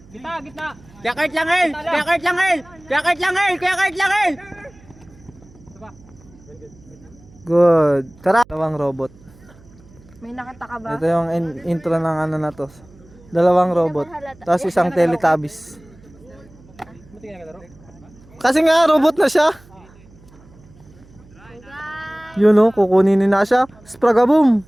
Gitna. Kakart lang, Earl. Good. Tara. Dalawang robot. May nakita ka ba? Ito yung intro ng ano na to. Dalawang robot. Tapos isang Teletubbies. Kasi nga robot na siya. Yun o, kukunin ni Nasha. Spragabum.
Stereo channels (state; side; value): noise; right; hum, 25 dB below the sound